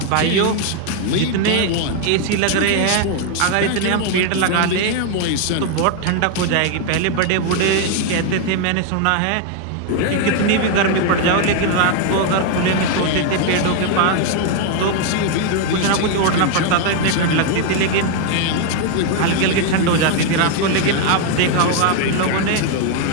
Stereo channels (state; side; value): different; both; correlation 0.01